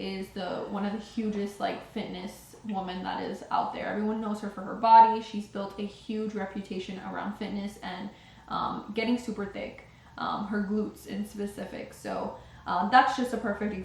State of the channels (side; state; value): both; identical; correlation 1.00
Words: is one of the hugest like fitness woman that is out there. Everyone knows her for her body. She's built a huge reputation around fitness and getting super thick, her glutes in specific. So that's just a perfect